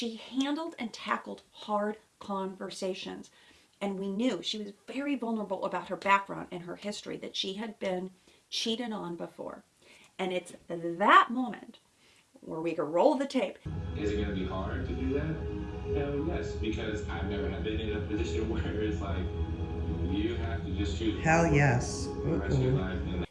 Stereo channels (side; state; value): both; identical; correlation 1.00